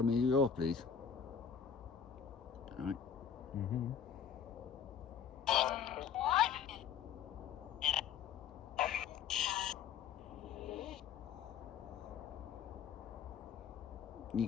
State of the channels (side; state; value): right; quieter; 7.6 dB